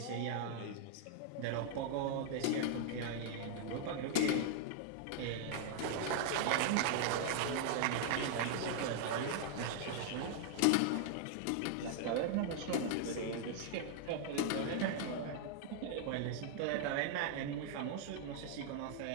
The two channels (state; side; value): different; both; correlation 0.00